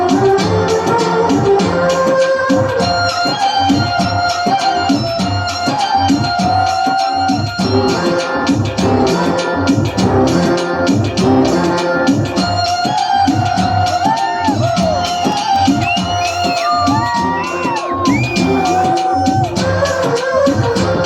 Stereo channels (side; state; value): both; identical; correlation 1.00